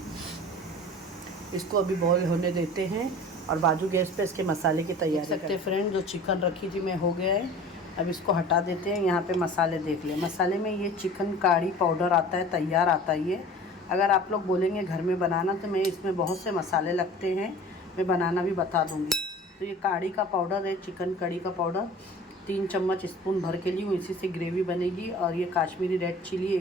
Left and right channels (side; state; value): both; normal; correlation 0.41